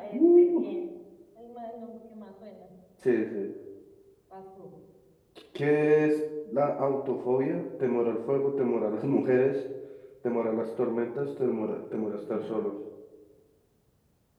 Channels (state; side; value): identical; both; correlation 1.00